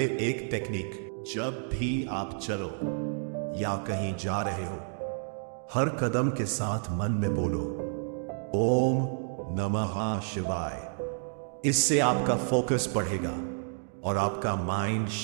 एक टेक्निक, जब भी आप चलो या कहीं जा रहे हो, हर कदम के साथ मन में बोलो ओम नमः शिवाय। इससे आपका फोकस बढ़ेगा और आपका माइंड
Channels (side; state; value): left; silent; 58 dB below the other